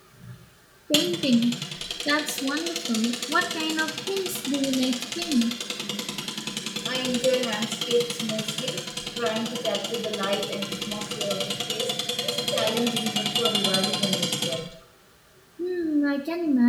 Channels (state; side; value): identical; both; correlation 1.00